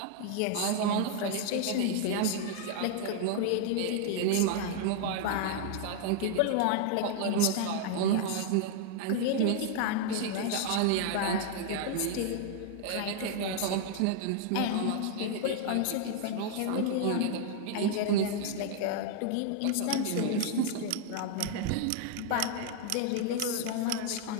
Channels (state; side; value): different; both; correlation 0.00